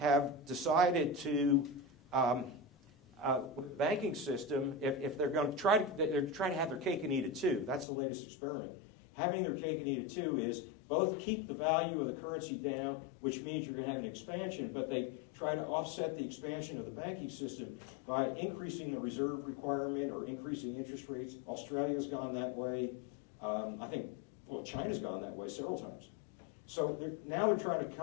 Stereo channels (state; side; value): drops out; right; at 7.9 s